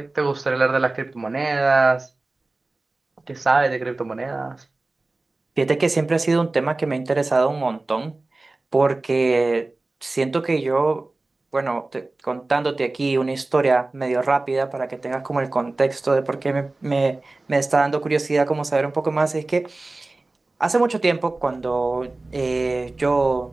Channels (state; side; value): quieter; left; 3.2 dB